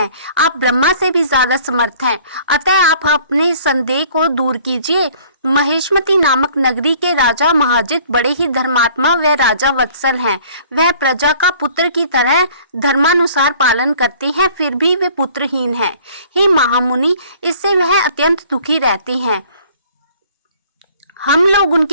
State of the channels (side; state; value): both; inverted; correlation -0.54